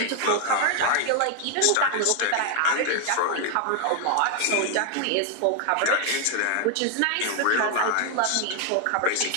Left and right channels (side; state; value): both; different; correlation 0.00